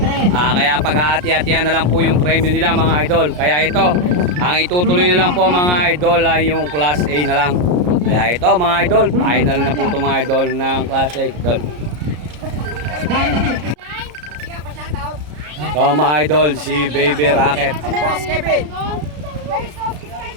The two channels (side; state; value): left; late; 33 ms